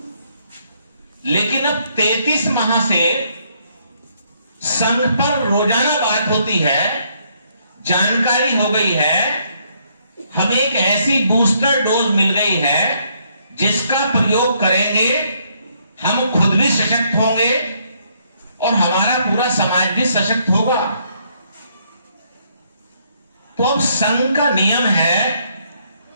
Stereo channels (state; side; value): inverted; both; correlation -0.71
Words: लेकिन अब 33 माह से संघ पर रोजाना बात होती है, जानकारी हो गई है, हमें एक ऐसी बूस्टर डोज मिल गई है जिसका प्रयोग करेंगे, हम खुद भी सशक्त होंगे और हमारा पूरा समाज भी सशक्त होगा। तो अब संघ का नियम है